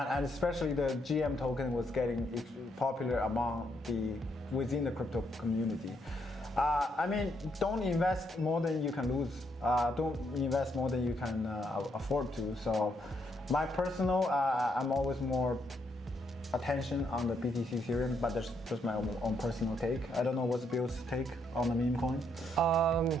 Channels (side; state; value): both; normal; correlation 0.75